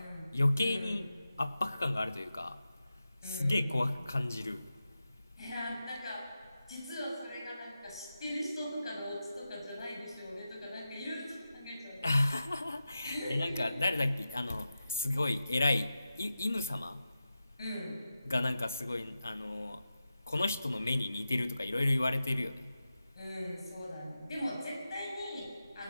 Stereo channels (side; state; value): both; inverted; correlation -0.91